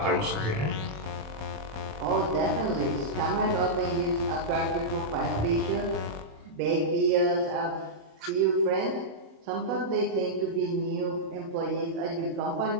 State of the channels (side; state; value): left; late; 27 ms